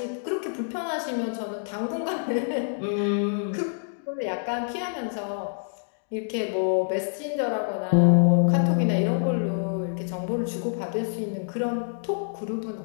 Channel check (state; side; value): silent; right; digital silence